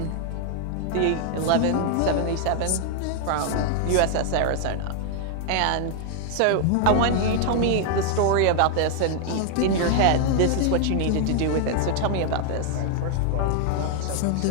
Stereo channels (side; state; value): both; different; correlation 0.00